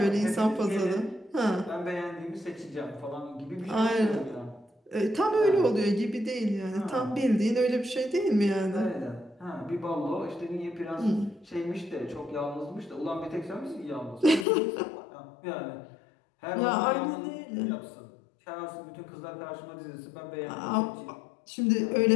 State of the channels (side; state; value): right; drops out; at 14.5 s